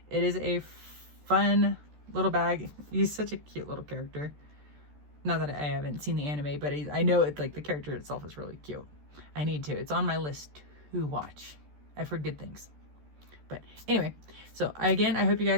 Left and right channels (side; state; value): left; late; 14 ms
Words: It is a fun little bag. He's such a cute little character. Not that I haven't seen the anime, but I know it's like the character itself is really cute. I need to. It's on my list to watch. I've heard good things. But anyway, so again, I hope you